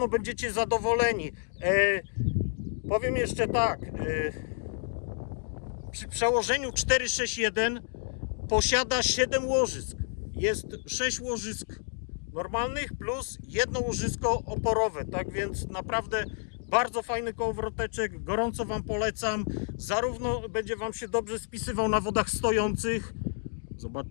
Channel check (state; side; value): silent; right; 58 dB below the other